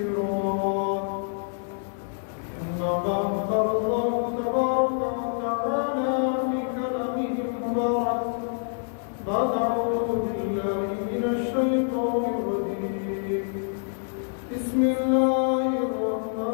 أما بعد قال الله تبارك وتعالى في كلامه المبارك بعد أعوذ بالله من الشيطان الرجيم بسم الله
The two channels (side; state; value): right; silent; digital silence